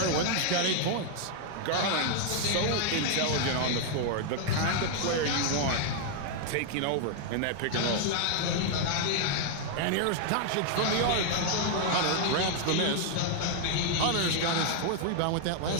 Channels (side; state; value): both; different; correlation 0.00